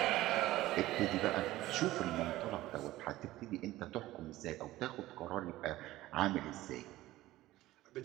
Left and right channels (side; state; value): left; quieter; 16.6 dB